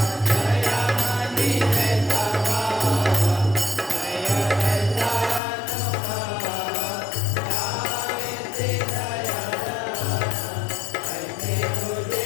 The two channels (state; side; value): drops out; right; at 5.4 s